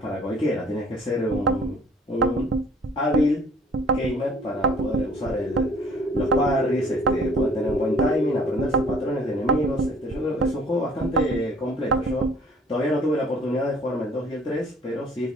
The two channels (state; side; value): normal; both; correlation 0.54